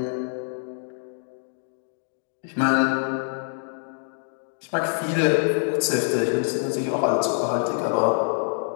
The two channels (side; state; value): right; silent; 58 dB below the other